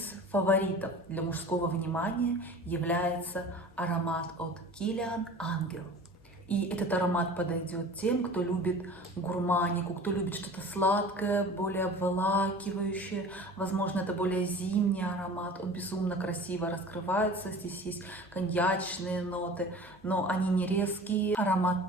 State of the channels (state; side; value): normal; both; correlation 0.40